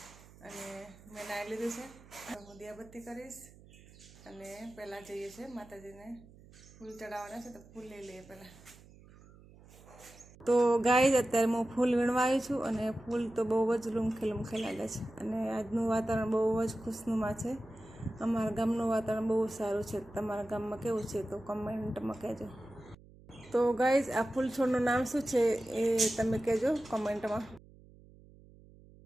અને મેં નાહી લીધું છે. હું દિયાબત્તી કરીશ અને પહેલાં જઈએ છીએ માતાજીને ફૂલ ચડાવવાના છે, તો ફૂલ લઈ લઈએ પહેલાં. તો ગાઈઝ, અત્યારે હું ફૂલ વીણવા આવી છું અને ફૂલ તો બહુ જ લૂમખે લાગે છે અને આજનું વાતાવરણ બહુ જ ખુશનુમા છે. અમારા ગામનું વાતાવરણ બહુ સારું છે. તમારા ગામમાં કેવું છે તો કમેન્ટમાં કહેજો. તો ગાઈઝ, આ ફૂલ છોડનું નામ શું છે એ તમે કહેજો કમેન્ટમાં.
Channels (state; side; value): noise; right; hum, 23 dB below the sound